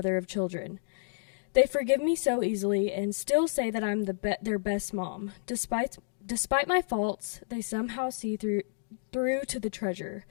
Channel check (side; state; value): right; silent; digital silence